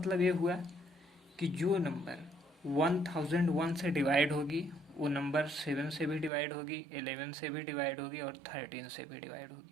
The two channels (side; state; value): left; drops out; at 6.3 s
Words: ये हुआ कि जो नंबर 1001 से डिवाइड होगी वो नंबर 7 से भी डिवाइड होगी, 11 से भी डिवाइड होगी और 13 से भी डिवाइड